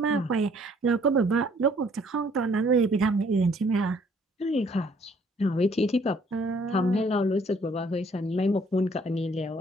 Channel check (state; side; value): normal; both; correlation 0.61